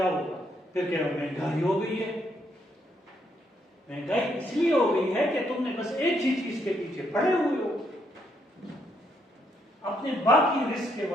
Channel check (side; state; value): both; normal; correlation 0.74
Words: ہوگا؟ پھر کیا مہنگائی ہو گئی ہے. مہنگائی اس لیے ہو گئی ہے کہ تم نے بس ایک ہی چیز کے پیچھے پڑے ہوئے ہو، اپنے باقی رزق کے